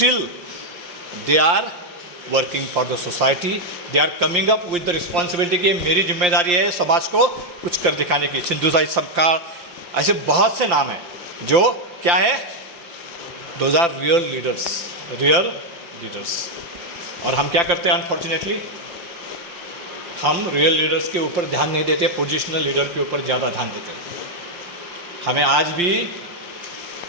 they are working for the society, they are coming up with the responsibility कि मेरी जिम्मेदारी है समाज को कुछ कर दिखाने की। सिंधु साई सबका, ऐसे बहुत से नाम हैं जो क्या है, those are real leaders, real leaders. और हम क्या करते हैं? अनफॉर्चुनेटली हम रियल लीडर्स के ऊपर ध्यान नहीं देते, पोजिशनल लीडर के ऊपर ज़्यादा ध्यान देते हैं। हमें आज भी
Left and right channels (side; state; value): left; late; 5.8 ms